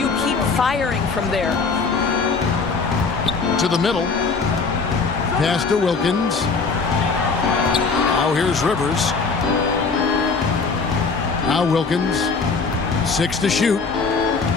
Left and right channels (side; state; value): right; quieter; 4.6 dB